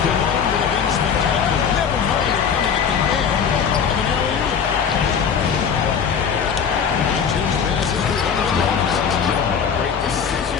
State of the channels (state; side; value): quieter; right; 7.0 dB